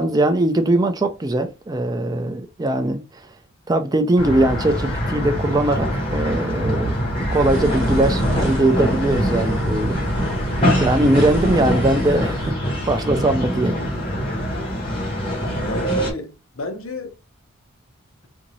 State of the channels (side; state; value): both; normal; correlation 0.67